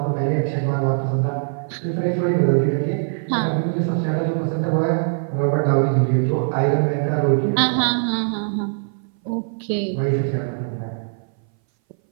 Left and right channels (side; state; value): left; silent; 61 dB below the other